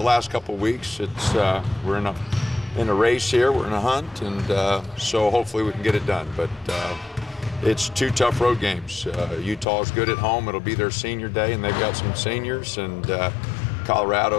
last couple of weeks, it's we're in a race here, we're in a hunt, and so hopefully we can get it done. But it's 2 tough road games. Utah's good at home. It'll be their senior day, and they've got some seniors, and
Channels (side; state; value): right; drops out; at 9.7 s